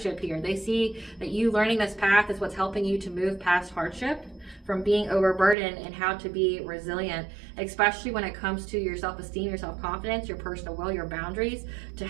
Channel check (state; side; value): drops out; left; at 5.6 s